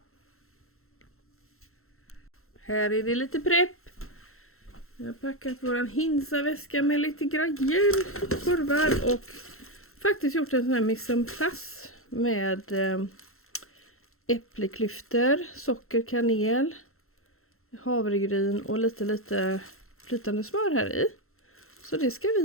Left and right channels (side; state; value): right; late; 0.62 ms